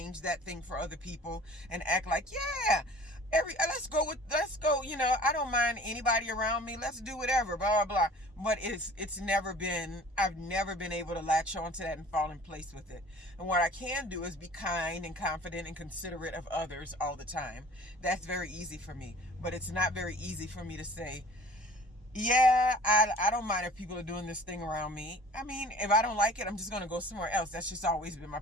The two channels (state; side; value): normal; both; correlation 0.47